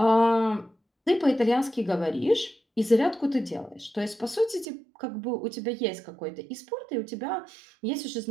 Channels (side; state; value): left; drops out; at 4.7 s